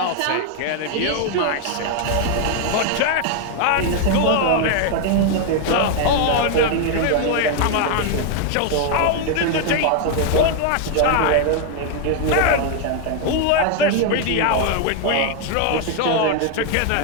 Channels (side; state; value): both; different; correlation 0.00